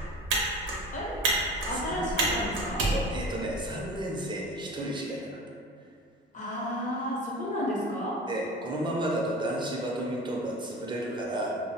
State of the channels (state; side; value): normal; both; correlation 0.36